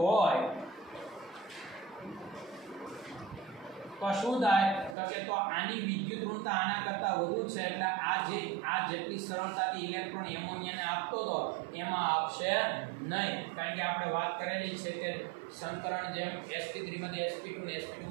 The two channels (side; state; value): left; drops out; at 5.0 s